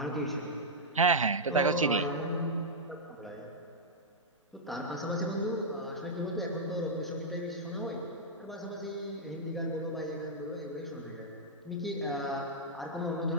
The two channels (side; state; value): both; normal; correlation -0.06